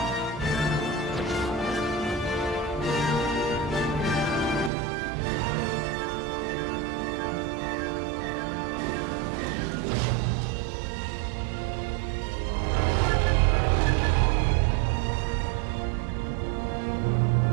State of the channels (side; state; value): left; drops out; at 4.7 s